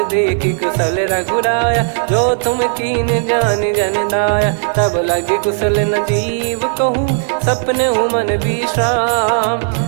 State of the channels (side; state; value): left; silent; digital silence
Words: देखी कुशल रघुराया, जो तुम कीन जान जन दाया। तब लगे कुशल न जीव कहूँ, सपने हूँ मन